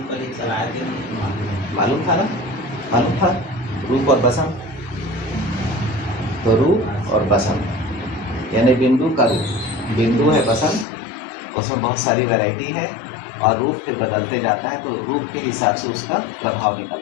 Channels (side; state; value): right; drops out; at 10.9 s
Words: पर ही चलाए थे। मालूम था ना? मालूम था रूप और बसंत। तो रूप और बसंत यानी बिंदु का रूप, बिंदु है बसंत, उसमें बहुत सारी वैरायटी है और रूप फिर बदलते जाता है, तो रूप के हिसाब से उसका प्रभाव